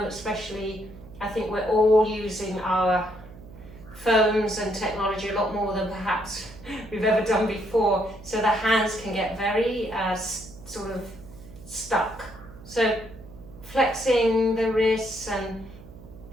especially, I think we're all using our phones and technology a lot more than perhaps we've ever done before, so the hands can get very sort of stuck. So flexing the wrists and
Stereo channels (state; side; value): noise; right; hum, 18 dB below the sound